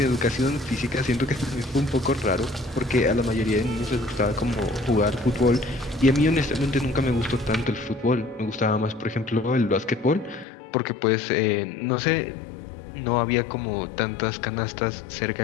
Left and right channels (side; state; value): right; drops out; at 10.5 s